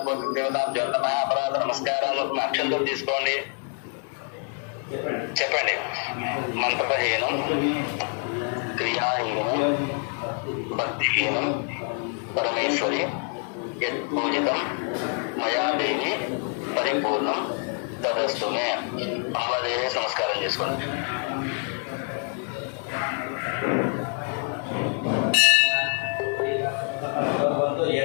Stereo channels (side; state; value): right; quieter; 37.5 dB